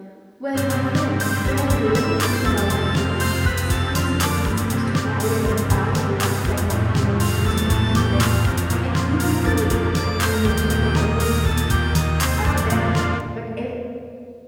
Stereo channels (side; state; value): both; identical; correlation 1.00